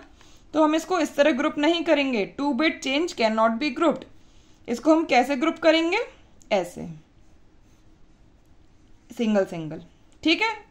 तो हम इसको इस तरह ग्रुप नहीं करेंगे। 2 bit change can not be grouped. इसको हम कैसे ग्रुप करेंगे, ऐसे, सिंगल सिंगल, ठीक है।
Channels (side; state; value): both; identical; correlation 1.00